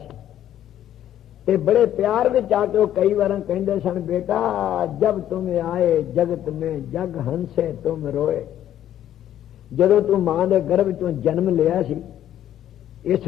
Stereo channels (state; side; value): quieter; right; 11.5 dB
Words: ते बड़े प्यार विच आके वो कई बार कहंदे सन, बेटा जब तुम आए जगत में जग हंसे तुम रोए। जदों तू मां दे गर्भ चों जन्म लिया सी,